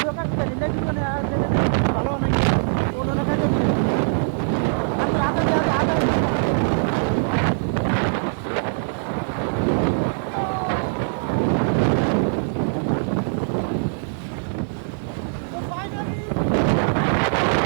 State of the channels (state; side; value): silent; left; digital silence